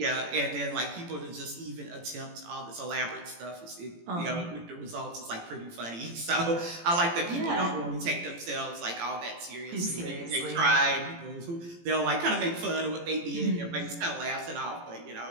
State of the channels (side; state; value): left; late; 18 ms